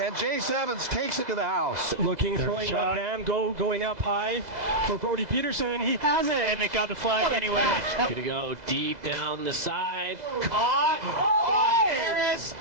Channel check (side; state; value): left; late; 2.0 ms